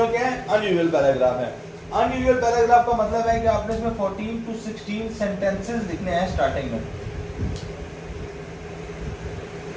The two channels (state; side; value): identical; both; correlation 1.00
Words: क्या है? अनयूजुअल पैराग्राफ है. अनयूजुअल पैराग्राफ का मतलब है कि आपने इसमें 14 to 16 सेंटेंसेस लिखने हैं स्टार्टिंग में.